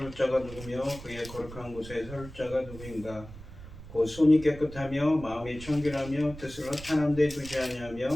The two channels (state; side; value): noise; right; rumble, 14 dB below the sound